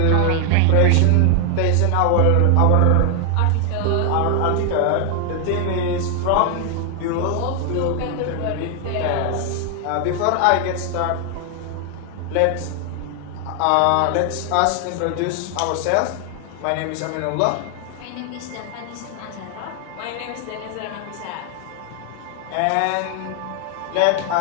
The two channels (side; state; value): both; different; correlation 0.00